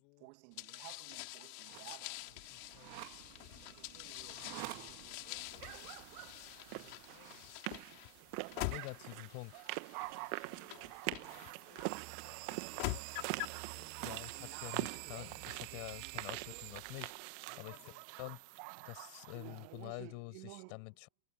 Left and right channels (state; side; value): different; both; correlation 0.00